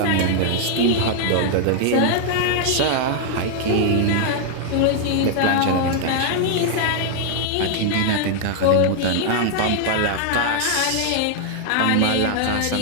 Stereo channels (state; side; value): different; both; correlation 0.00